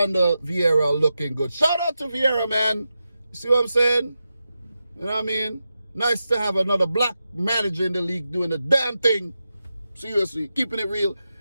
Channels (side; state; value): both; inverted; correlation -0.90